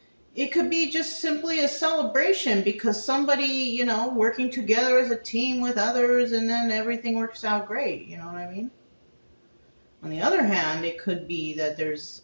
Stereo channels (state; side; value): inverted; both; correlation -1.00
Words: it could be just simply a celebration because somebody, working together as a team with others and then everything works out great. You know what I mean? On the other hand, it could be that there's,